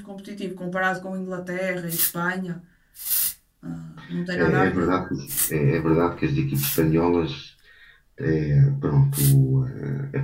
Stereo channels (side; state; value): both; identical; correlation 1.00